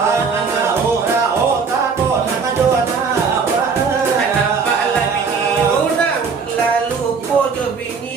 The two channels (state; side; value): quieter; left; 5.3 dB